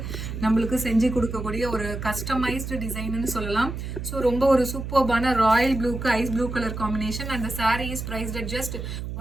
நம்மளுக்கு செஞ்சு கொடுக்கக்கூடிய ஒரு கஸ்டமைஸ்டு டிசைன்னு சொல்லலாம். ஸோ ரொம்ப ஒரு சூப்பர்பான ராயல் ப்ளூக்கு ஐஸ் ப்ளூ கலர் காம்பினேஷன். அந்த sari is priced at just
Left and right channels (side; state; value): right; noise; hum, 6 dB below the sound